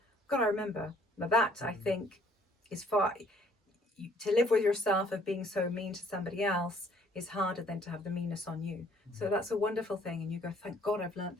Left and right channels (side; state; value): both; normal; correlation 0.61